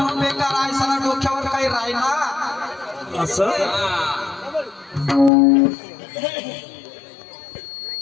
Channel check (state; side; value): drops out; right; at 5.3 s